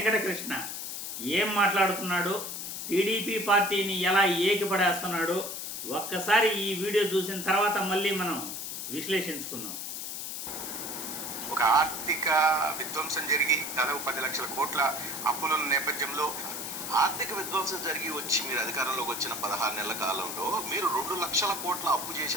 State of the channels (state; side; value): noise; left; hiss, 6 dB below the sound